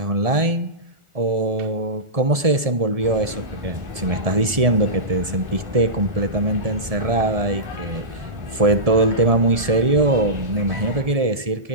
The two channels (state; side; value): late; left; 1.7 ms